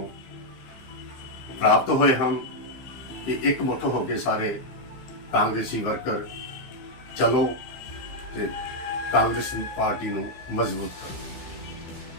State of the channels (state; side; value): late; right; 15 ms